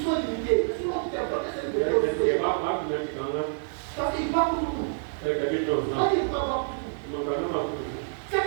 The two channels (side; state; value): left; silent; digital silence